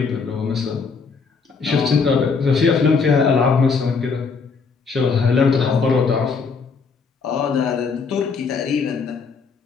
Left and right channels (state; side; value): quieter; right; 5.1 dB